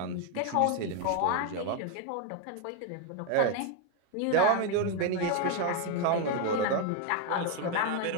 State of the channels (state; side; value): different; both; correlation 0.01